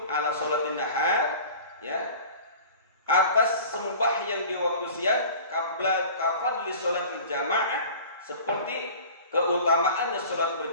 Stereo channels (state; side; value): inverted; both; correlation -0.41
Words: ala sholatin nahar, ya, atas sembahyang di waktu siang, qabla kafadli sholatil jamaah, seperti keutamaannya sholat